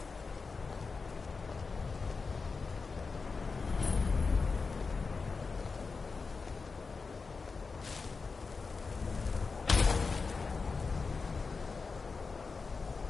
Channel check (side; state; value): right; quieter; 4.5 dB